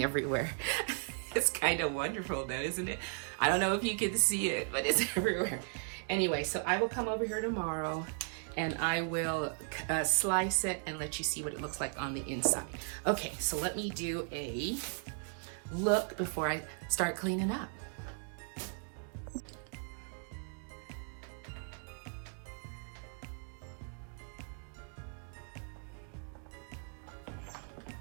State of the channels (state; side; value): silent; left; 53 dB below the other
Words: everywhere. It's kind of wonderful though, isn't it? I don't know if you can see it, but it's everywhere. Anyway, so I will come over here tomorrow and I will slice it and let you see what it looks like on the inside. Okay, so let me do a look before I start cleaning up.